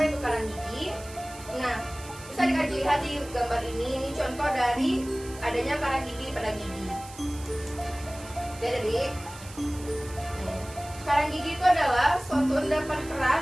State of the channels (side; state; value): right; noise; hiss, 17 dB below the sound